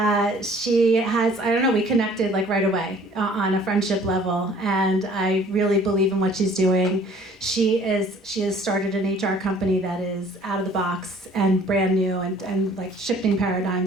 she has, I don't know, we connected like right away on a friendship level. And I really believe in what she's doing. She has started an HR company that is out of the box and brand new and like shifting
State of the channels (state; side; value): normal; both; correlation 0.54